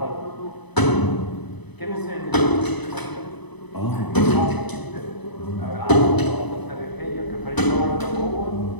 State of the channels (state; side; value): late; right; 1.0 ms